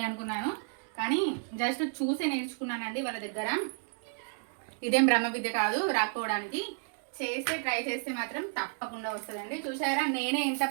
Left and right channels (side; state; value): left; silent; 57 dB below the other